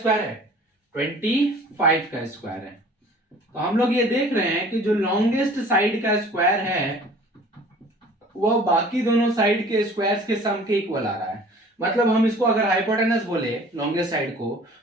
है, 25 का स्क्वायर है। तो हम लोग ये देख रहे हैं कि जो लॉन्गेस्ट साइड का स्क्वायर है वो बाकी दोनों साइड के स्क्वायर्स के सम के इक्वल आ रहा है। मतलब हम इसको अगर हाइपोटेनस बोले लॉन्गेस्ट साइड को,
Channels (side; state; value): both; normal; correlation 0.48